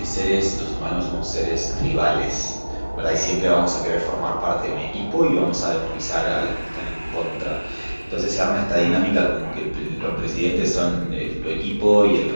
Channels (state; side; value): inverted; both; correlation -1.00